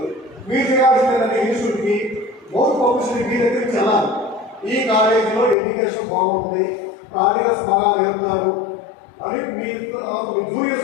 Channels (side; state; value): right; drops out; at 5.6 s